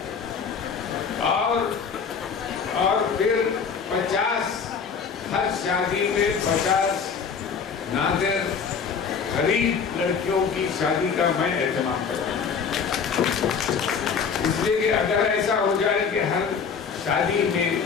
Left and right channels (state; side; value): quieter; right; 6.2 dB